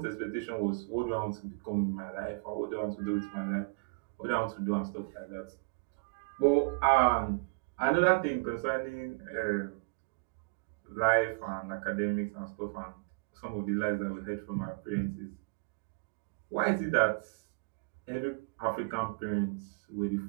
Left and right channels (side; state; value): left; quieter; 32.8 dB